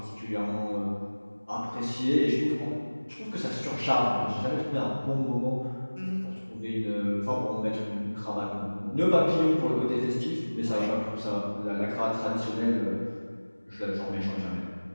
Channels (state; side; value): inverted; both; correlation -1.00